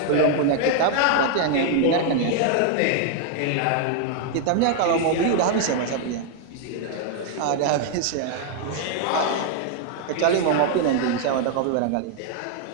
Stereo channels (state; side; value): different; both; correlation 0.00